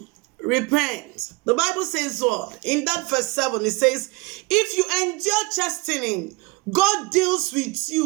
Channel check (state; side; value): quieter; left; 25.3 dB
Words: Repent. The Bible says what? In that verse 7, it says, "If you endure chastening, God deals with